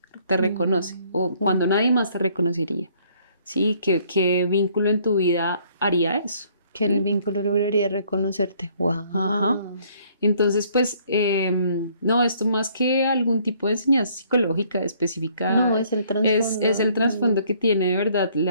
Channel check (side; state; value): both; inverted; correlation -0.63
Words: te reconoce o cuando nadie más te reconocería. Sí, ¿qué vínculo en tu vida haría eso? Que el vínculo lograría reconocerte. ¡Wow! Ajá. Entonces, pues, no, esto más que algún tipo de enseñanza psicológica específica, No, es el trasfondo. es el trasfondo que tiene de verdad